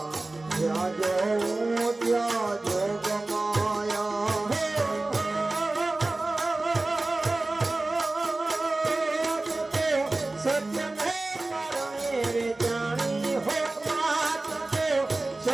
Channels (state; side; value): quieter; left; 3.0 dB